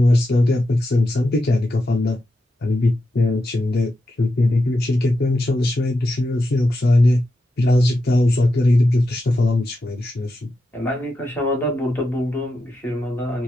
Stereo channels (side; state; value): both; normal; correlation 0.87